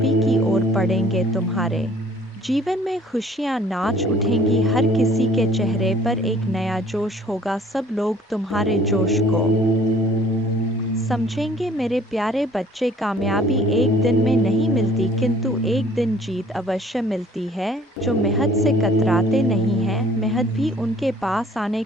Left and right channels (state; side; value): normal; both; correlation 0.55